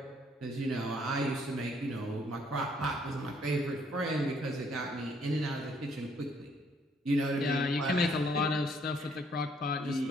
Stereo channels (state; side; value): normal; both; correlation 0.66